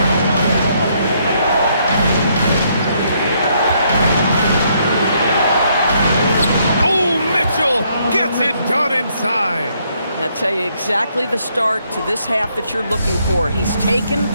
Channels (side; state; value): both; inverted; correlation -0.72